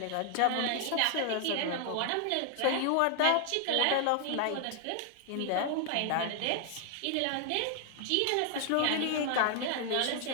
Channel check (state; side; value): different; both; correlation 0.00